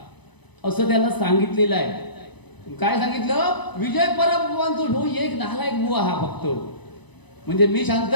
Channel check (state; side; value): late; right; 0.99 ms